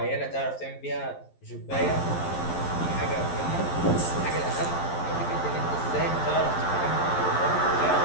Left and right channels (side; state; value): right; late; 11 ms